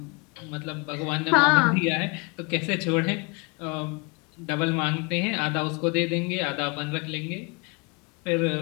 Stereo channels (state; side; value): quieter; right; 29.5 dB